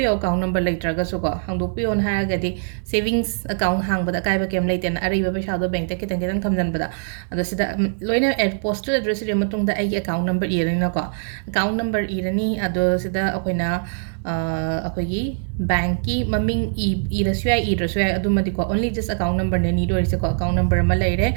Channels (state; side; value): silent; left; digital silence